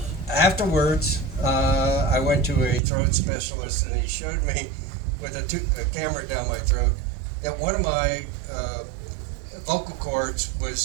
Afterwards, I went to a throat specialist, and he showed me with a camera down my throat that one of my vocal cords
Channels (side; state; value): left; drops out; at 2.8 s